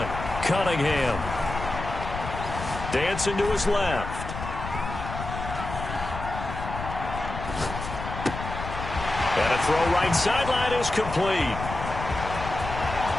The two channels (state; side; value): noise; left; rumble, 7 dB below the sound